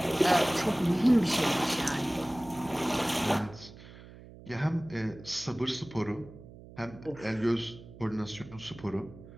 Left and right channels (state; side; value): noise; right; hum, 18 dB below the sound